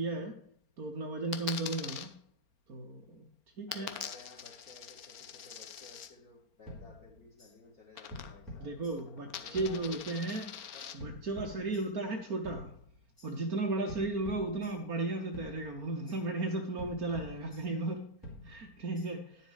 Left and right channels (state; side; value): late; left; 4.4 ms